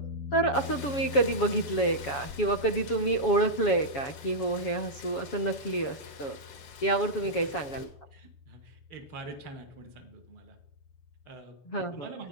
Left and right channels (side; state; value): right; late; 7.2 ms